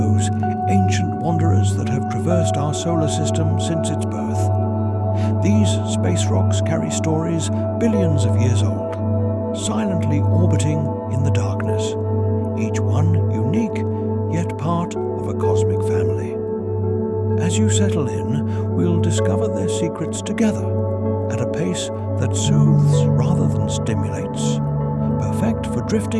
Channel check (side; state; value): both; identical; correlation 1.00